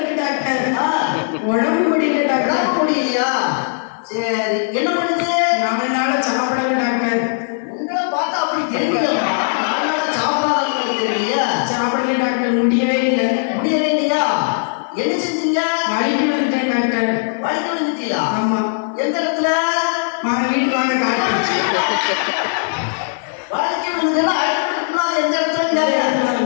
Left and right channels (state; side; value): silent; right; 56 dB below the other